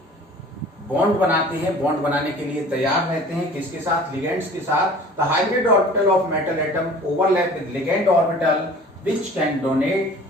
बॉन्ड बनाते हैं, बॉन्ड बनाने के लिए तैयार रहते हैं, किसके साथ, लिगेंड्स के साथ। The hybrid orbital of metal atom overlap with ligand orbital which can donate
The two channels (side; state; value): both; normal; correlation 0.45